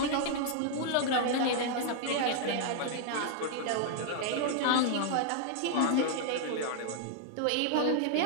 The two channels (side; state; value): both; different; correlation 0.00